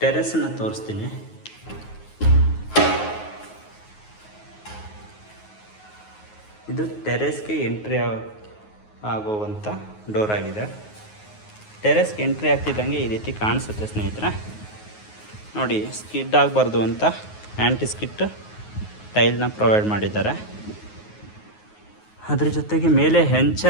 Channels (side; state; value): right; late; 9.5 ms